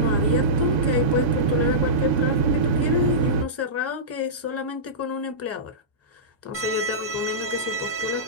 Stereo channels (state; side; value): normal; both; correlation -0.16